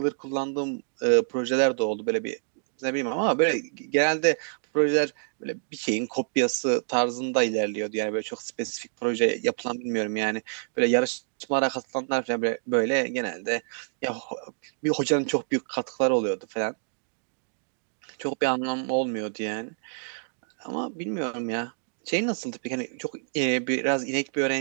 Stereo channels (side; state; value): left; silent; digital silence